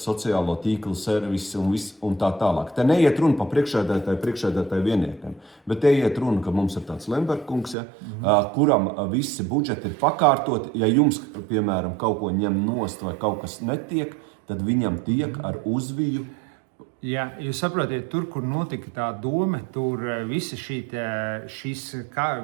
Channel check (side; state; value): left; drops out; at 7.8 s